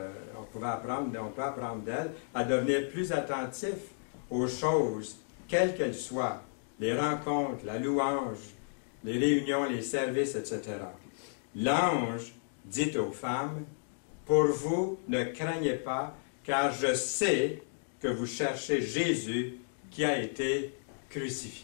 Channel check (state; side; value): silent; right; digital silence